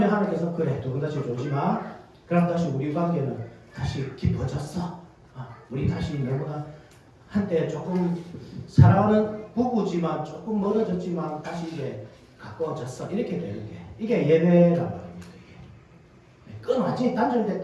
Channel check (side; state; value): both; identical; correlation 1.00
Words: 하나님께서 그래 두 분 다시 졸지 마. 그럼 다시 우리 관계는 다시 깊어졌어. 우리 다시 너무나 한때 조금 사랑하는 부부지만 조금 멀어졌지만 다시 이제 가까워졌어. 이렇게 되는 게 이게 예배란 말입니다. 이게 완전히